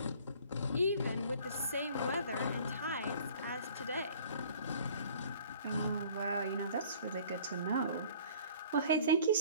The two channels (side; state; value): both; inverted; correlation -0.52